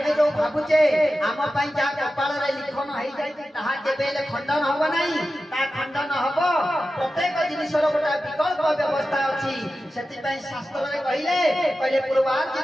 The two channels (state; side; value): normal; both; correlation 0.93